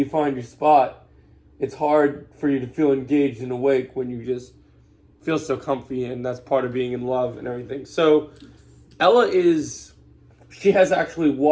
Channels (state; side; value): identical; both; correlation 1.00